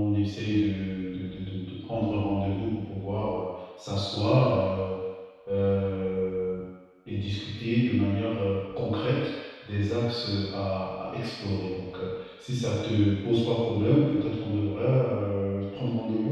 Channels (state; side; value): identical; both; correlation 1.00